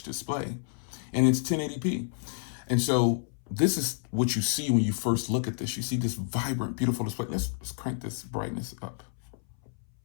display, and it's 1080p. And so this is what you see when you first look at this. You see this vibrant, beautiful display. Let's crank this brightness up.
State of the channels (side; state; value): right; silent; 58 dB below the other